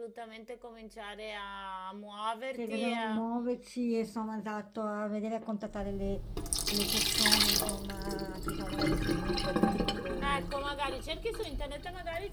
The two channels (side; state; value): both; identical; correlation 1.00